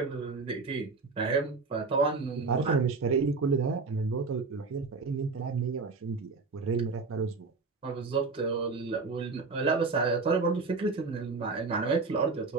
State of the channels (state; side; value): quieter; left; 4.2 dB